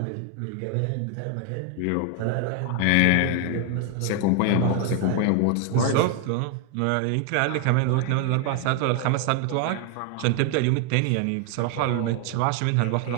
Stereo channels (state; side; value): different; both; correlation 0.01